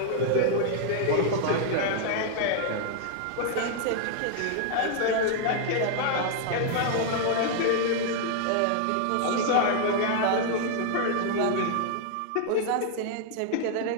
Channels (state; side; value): different; both; correlation 0.00